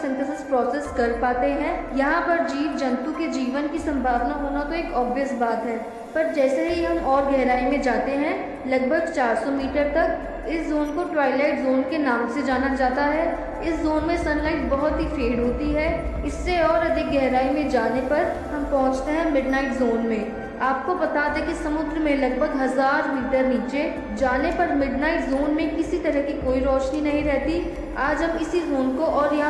प्रोसेस कर पाते हैं। यहाँ पर जीव जंतु के जीवन की संभावना होना तो एक ऑब्वियस बात है, पर जैसे ही हम और गहराई में जाते हैं, लगभग 400 मीटर तक, इस जोन को ट्वाइलाइट जोन के नाम से जाना जाता है। इस जोन में सनलाइट बहुत ही फेड होती है। इससे और अधिक गहराई में जाने पर हम पहुंचते हैं मिडनाइट जोन में। आपको बता दें कि समुद्र में लगभग 1000 मीटर नीचे जाने पर मिडनाइट जोन में किसी तरह की कोई रोशनी नहीं रहती। आज हम इसी जोन को और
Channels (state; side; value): identical; both; correlation 1.00